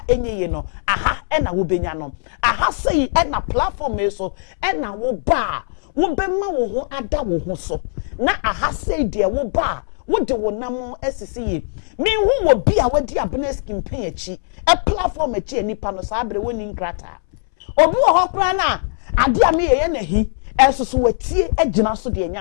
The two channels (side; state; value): right; silent; 66 dB below the other